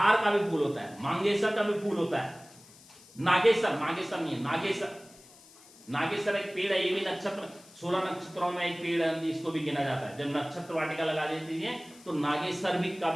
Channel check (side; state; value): left; noise; hiss, 23 dB below the sound